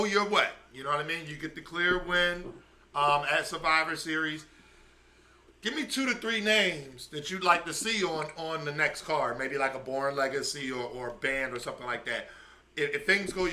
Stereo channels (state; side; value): identical; both; correlation 1.00